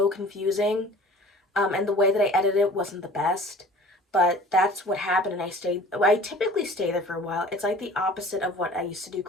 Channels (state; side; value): normal; both; correlation 0.46